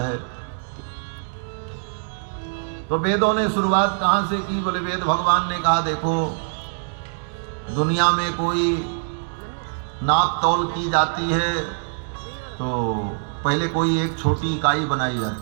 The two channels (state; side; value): silent; left; digital silence